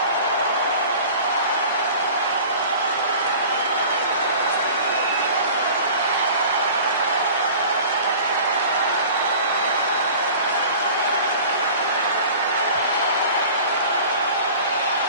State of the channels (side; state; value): both; inverted; correlation -0.42